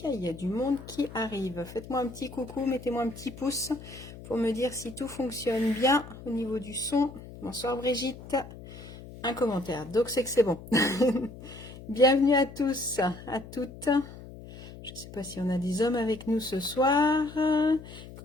Il y a du monde qui arrive. Faites-moi un petit coucou, mettez-moi un petit pouce pour me dire si tout fonctionne bien au niveau du son. Bonsoir Brigitte. Un commentaire, donc c'est que c'est bon. Bienvenue à tous, à toutes. Je ne sais pas si on a des hommes avec nous ce soir.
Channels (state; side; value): noise; left; hum, 15 dB below the sound